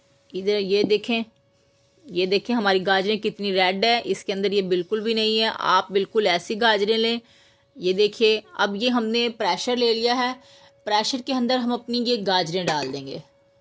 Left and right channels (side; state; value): both; identical; correlation 1.00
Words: इधर ये देखें हमारी गाजरें कितनी रेड है, इसके अंदर ये बिल्कुल भी नहीं है। आप बिल्कुल ऐसी गाजरें लें। ये देखिए, अब ये हमने प्रेशर ले लिया है। प्रेशर के अंदर हम अपनी ये गाजरें डाल देंगे,